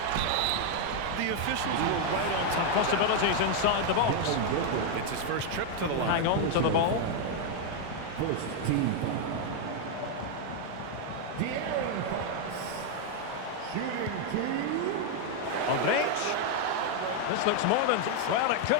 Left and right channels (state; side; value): different; both; correlation 0.00